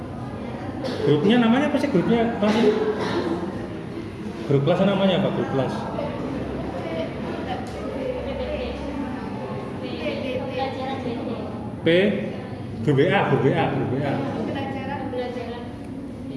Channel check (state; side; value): identical; both; correlation 1.00